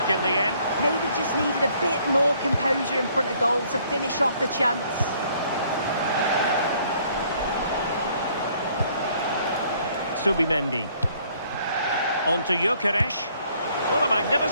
in the end. Maybe just needed a bit more composure in front of goal to finish off the chance. Subimendi. On to Gyökeres. What a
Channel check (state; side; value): inverted; both; correlation -0.63